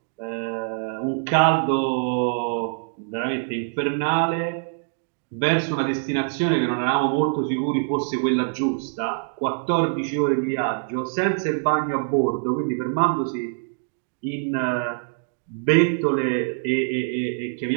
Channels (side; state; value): left; silent; digital silence